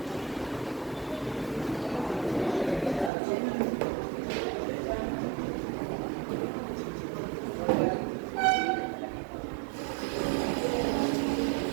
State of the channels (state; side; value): drops out; left; at 3.1 s